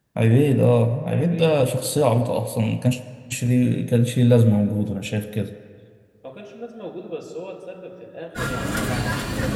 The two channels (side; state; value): both; identical; correlation 1.00